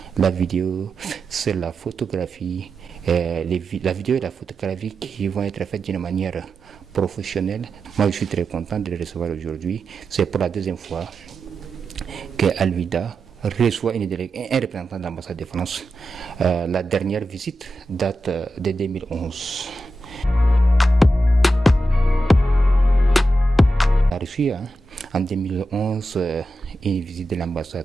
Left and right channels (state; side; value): normal; both; correlation 0.90